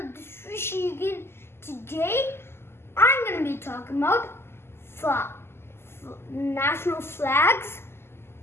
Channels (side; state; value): right; late; 0.12 ms